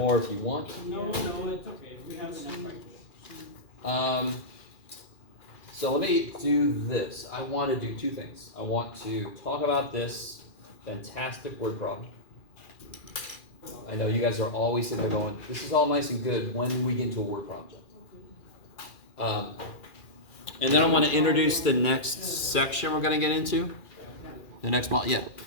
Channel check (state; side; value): late; right; 2.4 ms